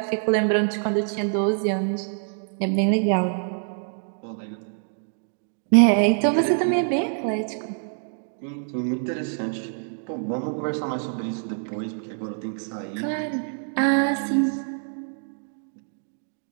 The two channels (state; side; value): silent; left; digital silence